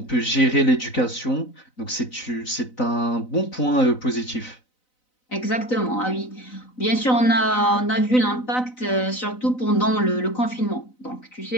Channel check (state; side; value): late; right; 4.0 ms